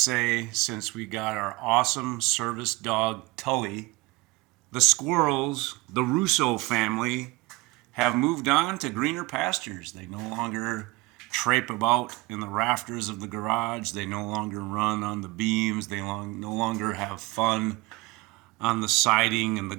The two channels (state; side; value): quieter; left; 22.4 dB